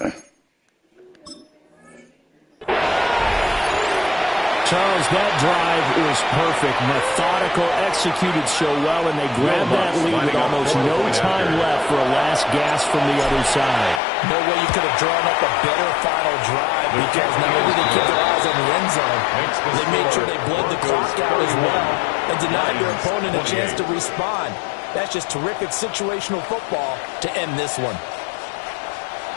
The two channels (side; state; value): right; drops out; at 14.0 s